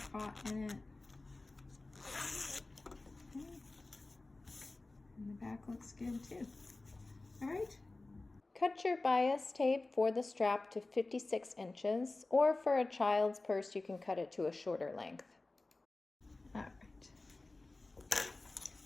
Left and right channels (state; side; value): quieter; right; 3.2 dB